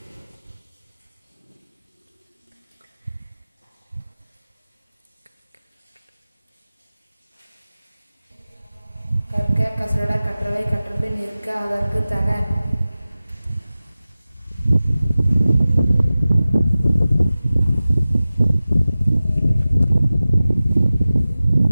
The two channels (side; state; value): both; inverted; correlation -0.96